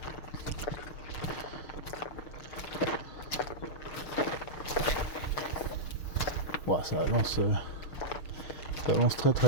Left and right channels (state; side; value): late; right; 6.5 ms